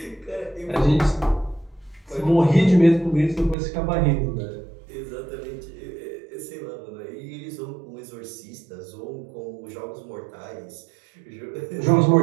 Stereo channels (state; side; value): drops out; left; at 3.6 s